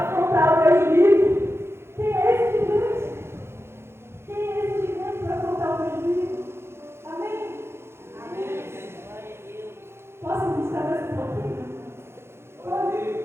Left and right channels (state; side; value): late; left; 0.12 ms